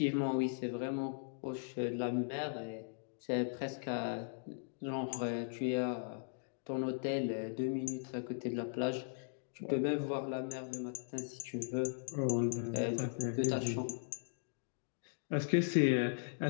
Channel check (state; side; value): silent; right; digital silence